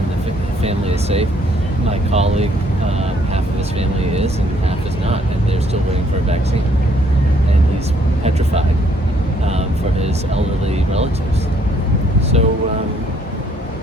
the family is safe. My colleague, half of his family is, and half is not, and they're still waiting for a vaccine. And he's petrified for his elderly relatives. So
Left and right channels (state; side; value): normal; both; correlation 0.66